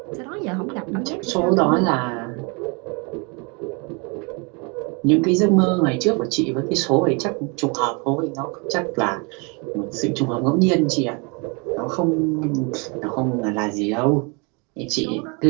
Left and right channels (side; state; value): left; quieter; 31.7 dB